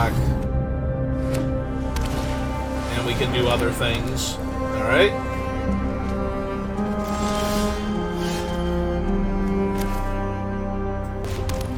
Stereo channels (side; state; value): both; identical; correlation 1.00